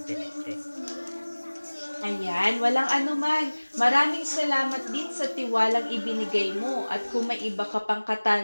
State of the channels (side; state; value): both; inverted; correlation -1.00